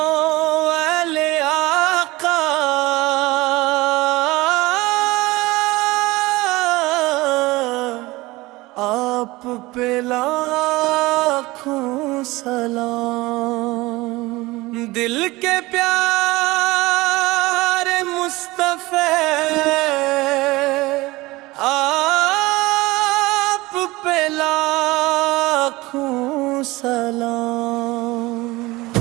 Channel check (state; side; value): quieter; left; 20.7 dB